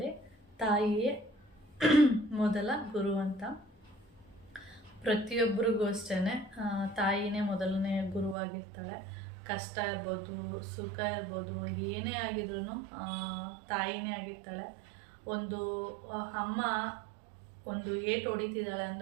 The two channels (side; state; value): left; drops out; at 8.3 s